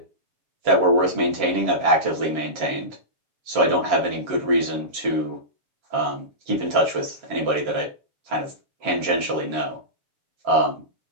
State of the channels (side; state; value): left; late; 7.3 ms